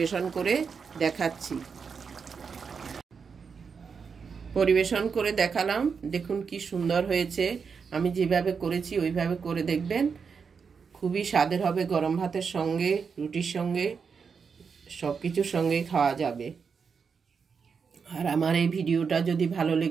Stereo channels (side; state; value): left; quieter; 5.9 dB